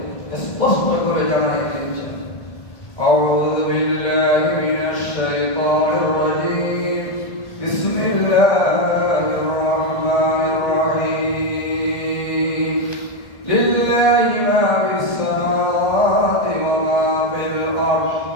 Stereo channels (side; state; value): right; late; 1.6 ms